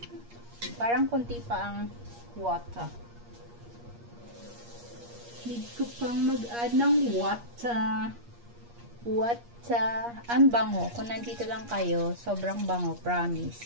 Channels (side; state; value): left; late; 8.5 ms